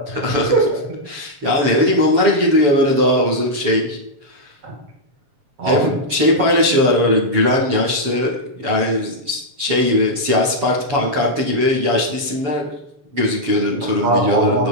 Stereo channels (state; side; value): late; left; 7.0 ms